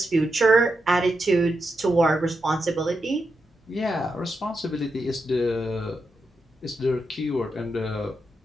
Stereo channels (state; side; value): normal; both; correlation 0.86